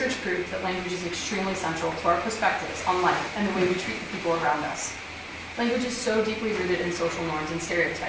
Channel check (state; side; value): identical; both; correlation 1.00